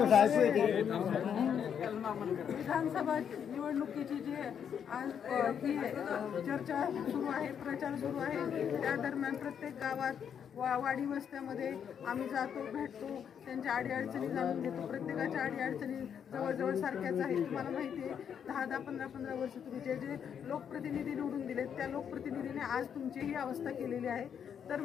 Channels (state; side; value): quieter; right; 8.0 dB